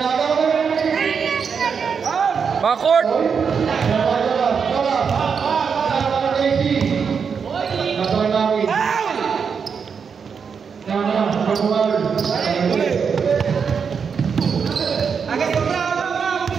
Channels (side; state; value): left; quieter; 6.3 dB